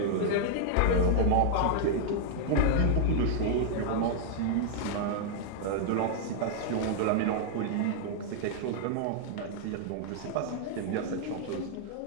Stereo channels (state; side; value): different; both; correlation 0.00